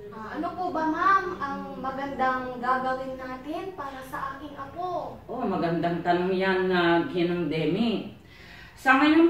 Ano po ba, ma'am, ang magandang gagawin natin para sa aking apo? Oh, magandang tanong yan na Ginang Demi. Sa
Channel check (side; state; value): both; identical; correlation 1.00